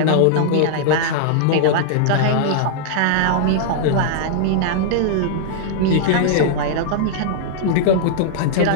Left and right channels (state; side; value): different; both; correlation -0.01